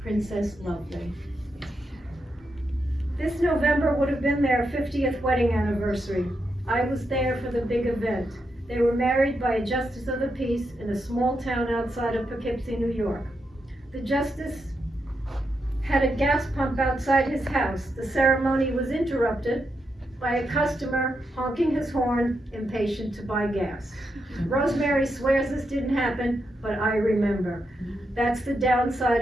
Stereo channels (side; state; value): both; normal; correlation 0.84